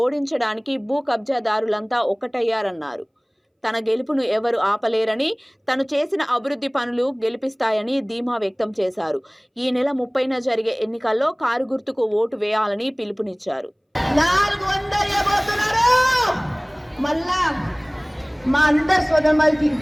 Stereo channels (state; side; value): identical; both; correlation 1.00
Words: ఓడించడానికి భూ కబ్జాదారులంతా ఒక్కటయ్యారన్నారు. తన గెలుపును ఎవరు ఆపలేరని, తను చేసిన అభివృద్ధి పనులు గెలిపిస్తాయని ధీమా వ్యక్తం చేశారు. ఈ నెల 30న జరిగే ఎన్నికల్లో కారు గుర్తుకు ఓటు వేయాలని పిలుపునిచ్చారు. 400 ఇవ్వబోతున్నారు. మళ్ళా మా అందరు సోదరులకి